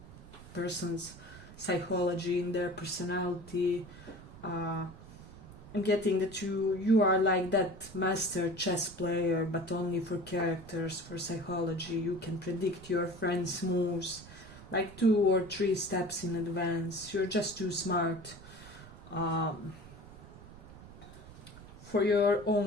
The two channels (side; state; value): right; noise; rumble, 17 dB below the sound